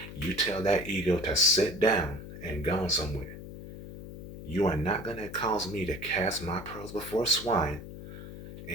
you tell that ego to sit down and go somewhere. You are not going to cause me to cast my pearls before swine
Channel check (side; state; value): left; noise; hum, 12 dB below the sound